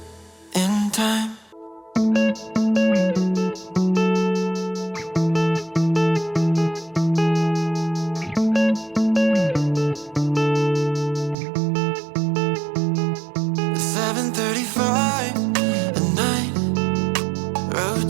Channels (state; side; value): drops out; left; at 11.4 s